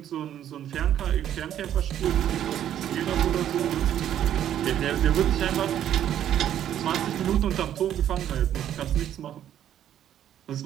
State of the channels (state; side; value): quieter; left; 10.8 dB